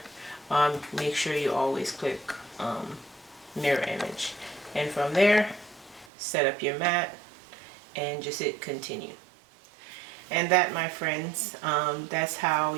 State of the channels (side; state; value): left; drops out; at 6.1 s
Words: make sure you always click mirror image, and from there set up your mat and just hit continue. And that, my friends, that's how